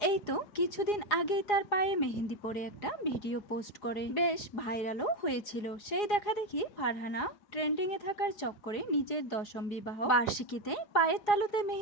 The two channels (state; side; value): late; right; 4.8 ms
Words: এই তো কিছুদিন আগেই তার পায়ে মেহেদি পরে একটা ভিডিও পোস্ট করে বেশ ভাইরালও হয়েছিল। সেই দেখা দেখি ফারহানা ট্রেন্ডিং এ থাকার চক্করে নিজের 10ম বিবাহ বার্ষিকীতে পায়ের তালুতে